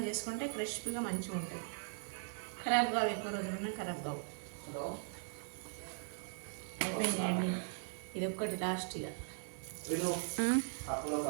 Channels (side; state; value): left; silent; digital silence